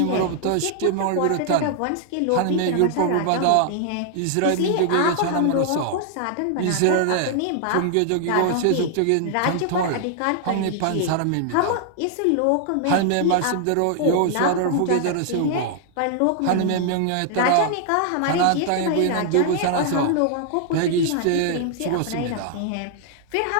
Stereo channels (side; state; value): both; different; correlation 0.00